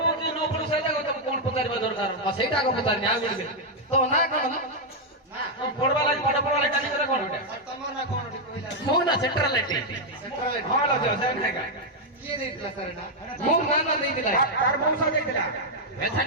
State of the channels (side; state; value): both; normal; correlation -0.01